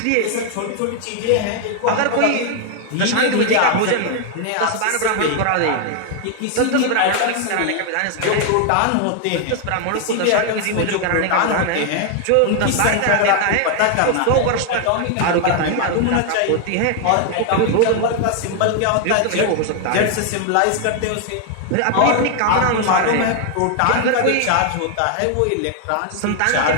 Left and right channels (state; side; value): different; both; correlation 0.00